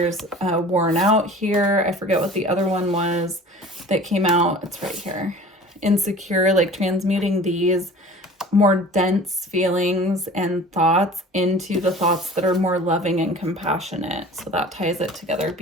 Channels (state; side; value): normal; both; correlation 0.43